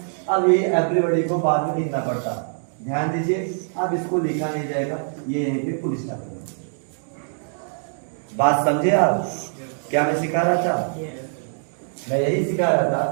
अब ये एवरीबॉडी को बाद में लिखना पड़ता, ध्यान दीजिए। अब इसको लिखा नहीं जाएगा, ये यहीं पे फुल स्टॉप है। बात समझे आप? क्या मैं सिखा रहा था? मैं यही सिखा रहा था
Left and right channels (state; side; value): silent; left; digital silence